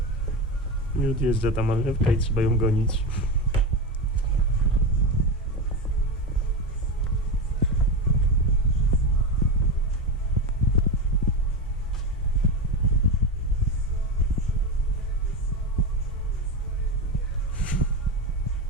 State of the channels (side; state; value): both; normal; correlation 0.19